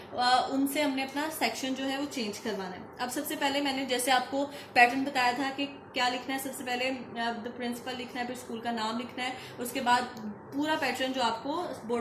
उनसे हमने अपना सेक्शन जो है वो चेंज करवाना है। अब सबसे पहले मैंने जैसे आपको पैटर्न बताया था कि क्या लिखना है, सबसे पहले द प्रिंसिपल लिखना है, फिर स्कूल का नाम लिखना है, उसके बाद पूरा पैटर्न जो आपको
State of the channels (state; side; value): identical; both; correlation 1.00